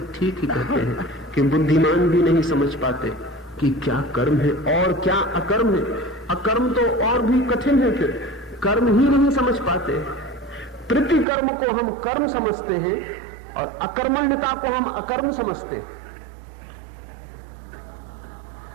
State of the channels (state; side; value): drops out; left; at 11.2 s